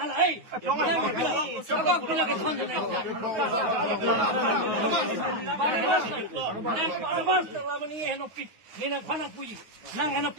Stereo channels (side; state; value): left; late; 9.5 ms